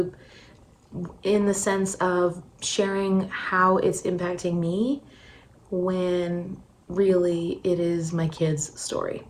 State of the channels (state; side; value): identical; both; correlation 1.00